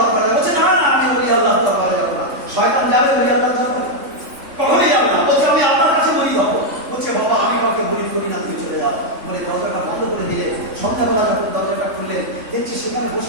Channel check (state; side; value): late; left; 3.4 ms